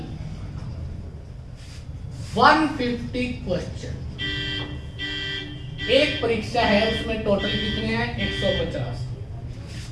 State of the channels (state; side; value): identical; both; correlation 1.00